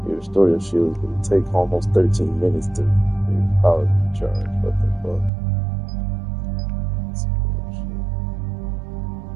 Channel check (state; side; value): drops out; left; at 5.3 s